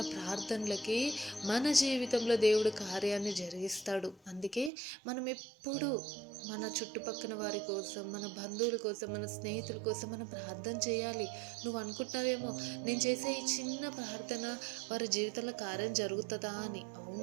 ప్రార్థనలకి మన జీవితంలో దేవుడు కార్యాన్ని జరిగిస్తాడు. అందుకే మనం ఎప్పుడు మన చుట్టుపక్కల వారి కోసం, మన బంధువుల కోసం, మన స్నేహితుల కోసం మనం ప్రార్థన చేయాలి. నువ్వు అనుకుంటున్నావేమో, నేను చేసే ఈ చిన్న ప్రార్థన వారి జీవితంలో కార్యం జరుగుతుందా అని.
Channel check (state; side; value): drops out; left; at 4.7 s